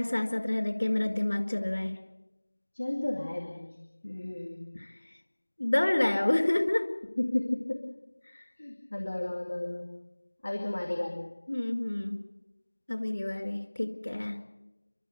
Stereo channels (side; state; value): both; inverted; correlation -1.00